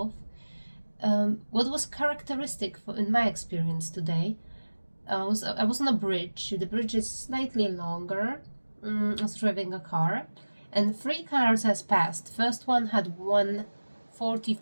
What was characteristic in my experience today I was on a bridge. The bridge is slightly longer. I was driving a car, and 3 cars has passed. First one had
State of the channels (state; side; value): inverted; both; correlation -1.00